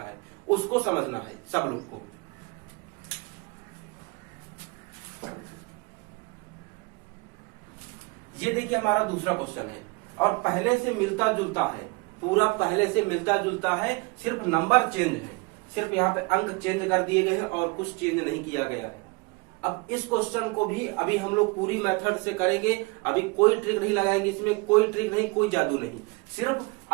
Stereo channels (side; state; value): left; quieter; 27.2 dB